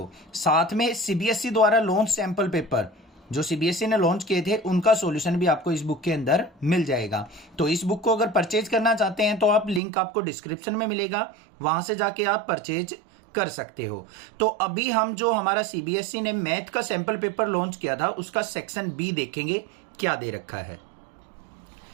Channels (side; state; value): left; drops out; at 9.8 s